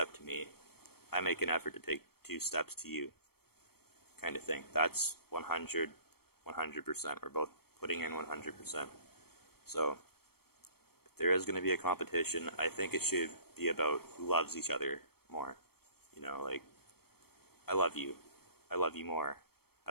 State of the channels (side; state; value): right; late; 0.95 ms